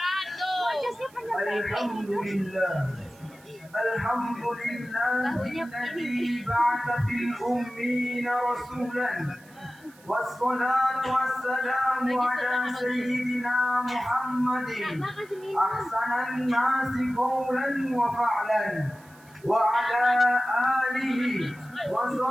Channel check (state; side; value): noise; right; hiss, 27 dB below the sound